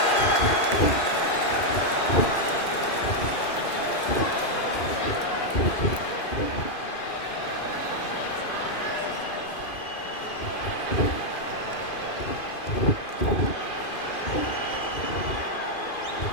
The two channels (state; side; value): late; right; 2.5 ms